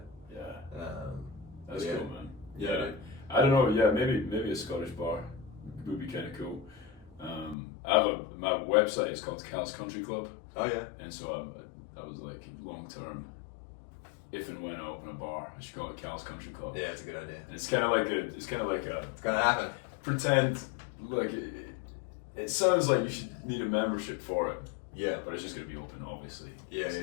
That's cool, man. Yeah. I don't know, maybe a Scottish bar would be kind of cool. My website is called Cal's Country Club. Oh, yeah. And so I was long term, if and when I open a bar, I should call it Cal's Country Club. Yeah, it's a good idea. And it's kind of like it's gonna happen. Pretend, it sounds like you should need a membership for it. Yeah. But it's just going to be open, obviously. Yeah.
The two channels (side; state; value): right; drops out; at 7.6 s